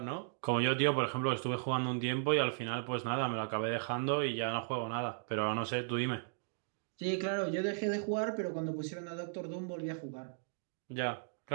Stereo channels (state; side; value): silent; left; digital silence